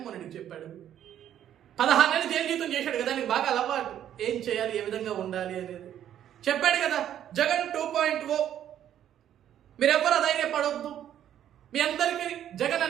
రెడ్డి చెప్పాడు. 16 నెలలు జైలు జీతం చేశాడు కదా, నీకు బాగా అలవాటు ఏం చేయాలి, ఏ విధంగా ఉండాలి అనేది చెప్పాడు కదా. జగన్ 2.0 మీరెవ్వరు ధైర్యపడొద్దు, మీ అందరికీ జగన్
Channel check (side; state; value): left; quieter; 10.7 dB